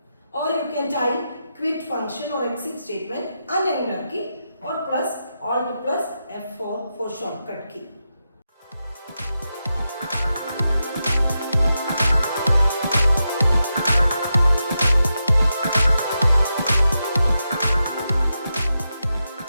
Or you can type quit function or exit statement and enter key, or plus Alt plus F4 for shortcut key.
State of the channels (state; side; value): inverted; both; correlation -0.88